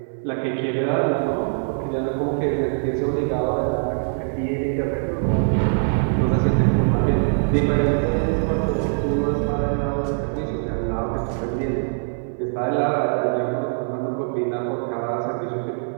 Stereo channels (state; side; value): silent; left; 59 dB below the other